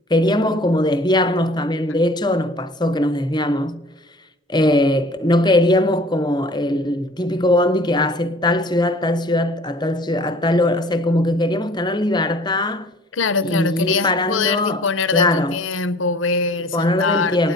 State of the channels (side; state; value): both; normal; correlation 0.49